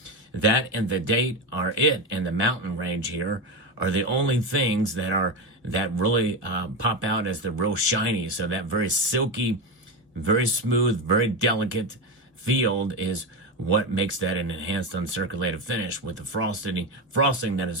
That and the date are it, and the mountain range here are the only things that really pop out as the real shiny. So that very silky, very smooth, very delicate field is what makes that an enhanced uncirculated finish with the frosting that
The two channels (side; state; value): both; normal; correlation 0.16